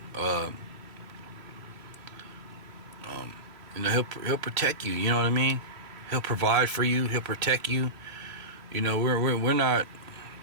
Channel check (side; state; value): left; late; 3.0 ms